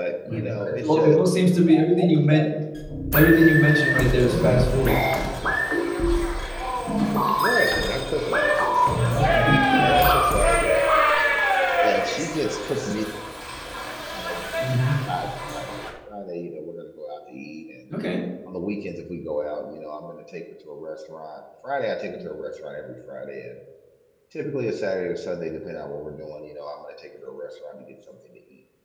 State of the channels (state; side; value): identical; both; correlation 1.00